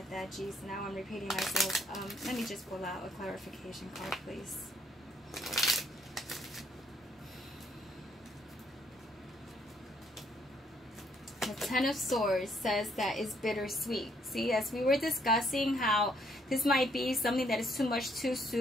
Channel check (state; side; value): normal; both; correlation 0.69